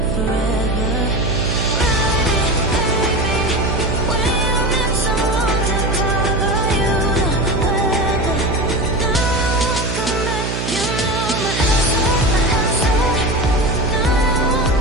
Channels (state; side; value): noise; right; hum, 3 dB below the sound